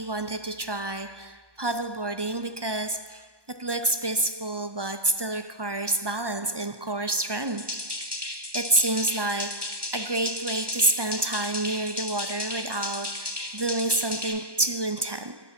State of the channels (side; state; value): left; late; 1.2 ms